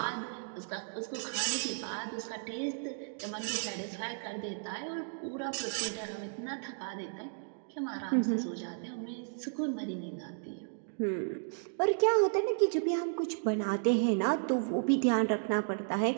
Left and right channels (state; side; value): silent; left; digital silence